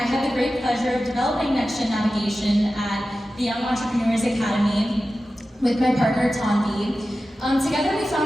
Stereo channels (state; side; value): normal; both; correlation 0.94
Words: had the great pleasure of developing Next Gen Navigation at the Young Entrepreneurs Academy with my partner, Tanvi. Together, we